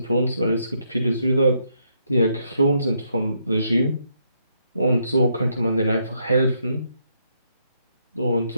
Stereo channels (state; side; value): inverted; both; correlation -0.76